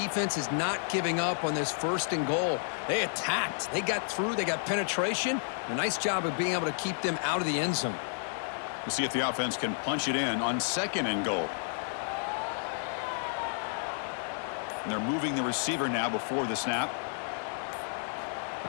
is not giving up on this 1st and goal. They attacked. They got through. They got penetration. A nice job of being able to keep them out of the end zone. We'll see if the offense can punch it in on 2nd and goal. And they're moving the receiver now before the snap.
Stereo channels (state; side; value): silent; right; digital silence